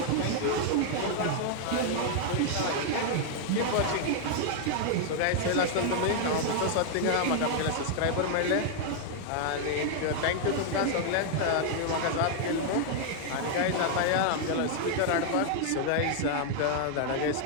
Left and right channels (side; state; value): both; different; correlation 0.00